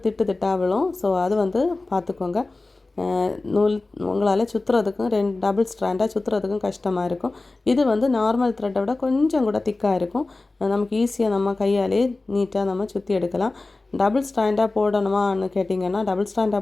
திட்டாக விழும். ஸோ அது வந்து பார்த்துக்கோங்க. நூல் உங்களால் சுற்றுறதுக்கும் டபுள் ஸ்ட்ராண்டாக சுற்றுறதுக்கும் கஷ்டமாக இருக்கும். இது வந்து நார்மல் த்ரெட்டை விட கொஞ்சம் கூட திக்காக இருக்கும். நமக்கு ஈஸியாக நம்ம கையாலே நீட்டாக நம்ம சுற்றி எடுக்கலாம். டபுள் ஸ்டாண்டாக போடணுமான்னு கேட்டிங்கன்னா, டபுள் ஸ்டாண்டாக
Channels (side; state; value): right; quieter; 3.3 dB